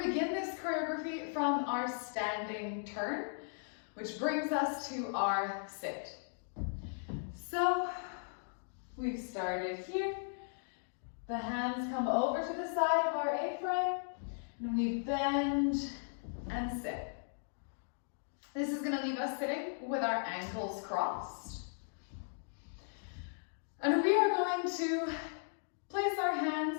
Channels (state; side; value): silent; right; digital silence